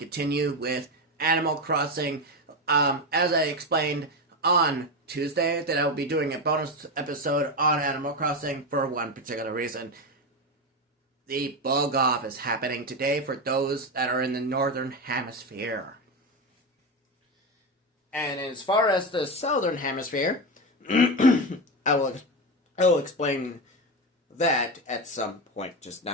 with Animal Crossing. As I explained on Tuesday, that I will be doing a bonus episode on Animal Crossing for one particular reason. The bug off is happening today for those that are in the Northern Hemisphere. And as far as the Southern Hemisphere, I will explain that at some point, just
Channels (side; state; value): both; normal; correlation 0.15